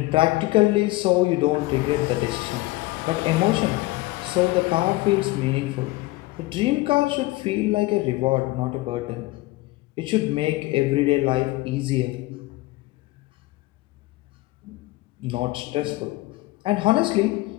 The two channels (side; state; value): right; quieter; 19.8 dB